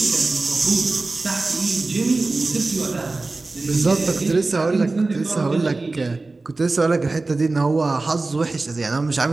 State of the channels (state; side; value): quieter; left; 3.4 dB